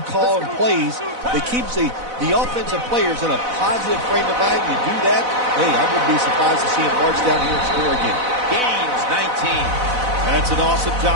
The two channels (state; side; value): late; left; 4.0 ms